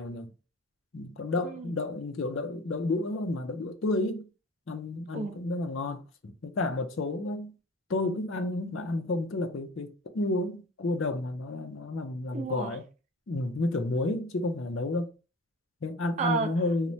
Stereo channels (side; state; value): both; normal; correlation 0.39